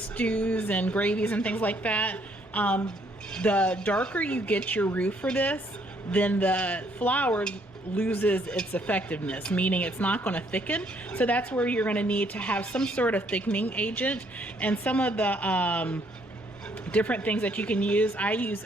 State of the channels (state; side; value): normal; both; correlation 0.67